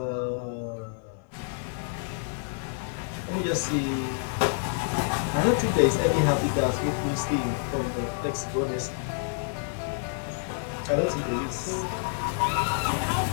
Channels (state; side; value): silent; right; digital silence